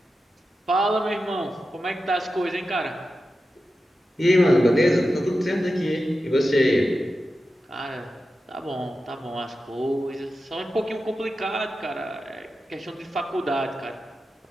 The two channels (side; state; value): both; normal; correlation 0.91